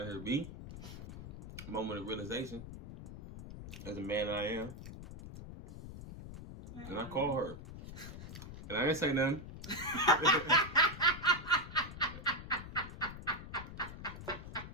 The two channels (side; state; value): left; noise; rumble, 11 dB below the sound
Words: here, B. Moment of realization. As a man I am. And I call her. And I didn't say nothing.